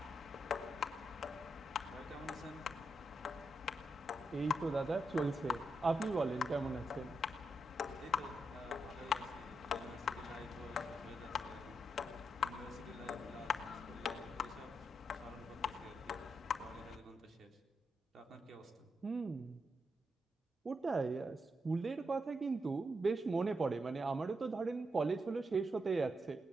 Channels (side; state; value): both; normal; correlation 0.83